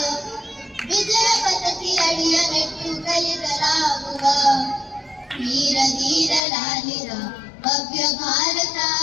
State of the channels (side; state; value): right; drops out; at 6.4 s